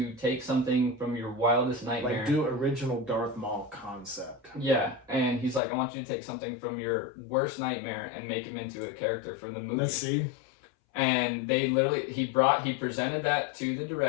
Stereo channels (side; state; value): right; drops out; at 5.6 s